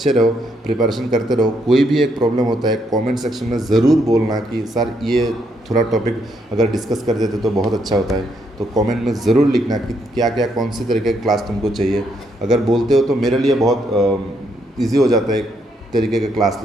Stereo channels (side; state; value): both; normal; correlation 0.75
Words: रहो, प्रिपरेशन करते रहो। कोई भी एक प्रॉब्लम होता है कमेंट सेक्शन में ज़रूर बोलना कि सर ये थोड़ा टॉपिक अगर डिस्कस कर देते तो बहुत अच्छा होता है। तो कमेंट में ज़रूर लिखना कि क्या क्या कौन सी तरीके की क्लास तुमको चाहिए। अगर बोलते हो तो मेरे लिए बहुत ईजी हो जाता है एक तरीके का क्लास